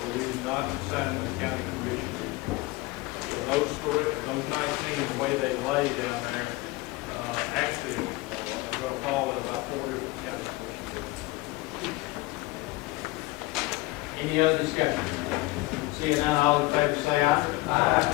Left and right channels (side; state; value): right; quieter; 20.9 dB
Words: we did not assign them to county commissioners. So those 19, the way they lay down there, actually are going to fall in about 4 different county commissioners. Any other discussion? Seeing none, all in favor say aye.